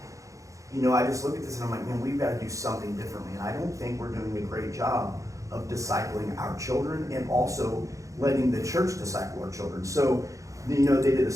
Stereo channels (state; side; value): late; left; 0.16 ms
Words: you know, I just look at this and I'm like, man, we've got to do something differently. And I don't think we're doing a great job of discipling our children and also letting the church disciple our children. So, you know, they did a